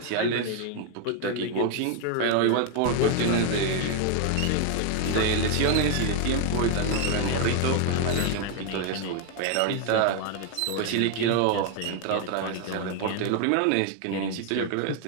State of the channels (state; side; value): different; both; correlation 0.00